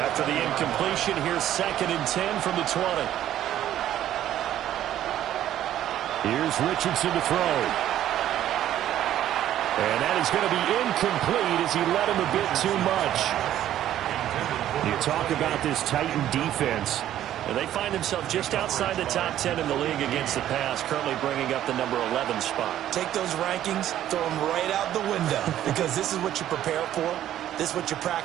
the incompletion, here's 2nd and 10 from the 20. Here's Richardson to throw. And that is going to be incomplete as he led him a bit too much. You talk about this Titan defense. And they find themselves just outside the top 10 in the league against the pass, currently bringing up the number 11 spot. Take those rankings, throw them right out the window, because this is what you prepare for. This is what you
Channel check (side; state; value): left; quieter; 12.0 dB